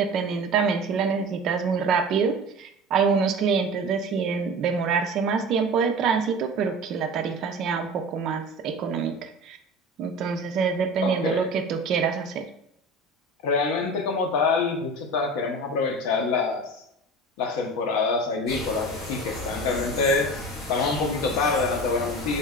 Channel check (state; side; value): normal; both; correlation 0.34